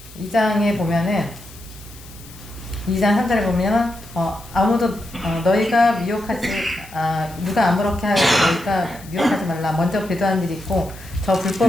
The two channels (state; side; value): noise; left; hiss, 20 dB below the sound